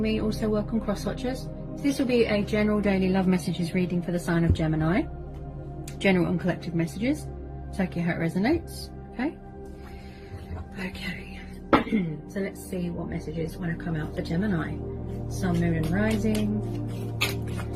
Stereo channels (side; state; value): both; identical; correlation 1.00